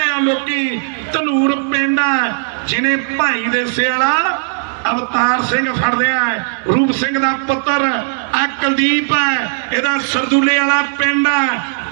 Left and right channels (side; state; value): left; silent; digital silence